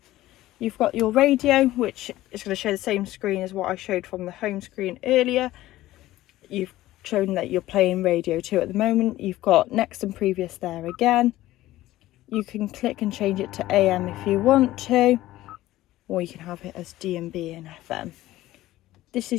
You've got your radio, which is going to show the same screen as what I showed from the home screen earlier. You've shown that you're playing radio 2 at the moment. You've got next and previous there again. You can click and change it to AM if you want to, or you can have it as DMB and FM. This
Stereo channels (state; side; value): quieter; right; 15.9 dB